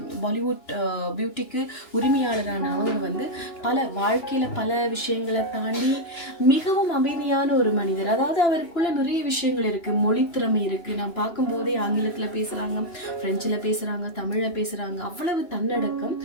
பாலிவுட் பியூட்டிக்கு உரிமையாளரான அவங்க வந்து பல வாழ்க்கையில் பல விஷயங்களை தாண்டி மிகவும் அமைதியான ஒரு மனிதர். அதாவது அவருக்குள்ள நிறைய விஷயங்கள் இருக்கு. மொழி திறமை இருக்கு. நான் பார்க்கும்போதே ஆங்கிலத்துல பேசுறாங்க, பிரெஞ்சுல பேசுறாங்க, தமிழ்ல பேசுறாங்க. அவ்வளவு தன்னடக்கம்.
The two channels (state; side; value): late; right; 2.9 ms